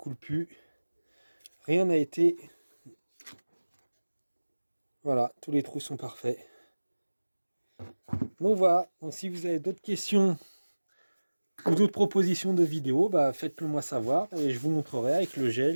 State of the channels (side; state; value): both; inverted; correlation -1.00